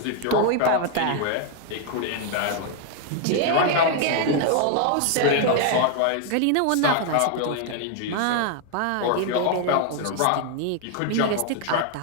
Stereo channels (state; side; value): different; both; correlation 0.00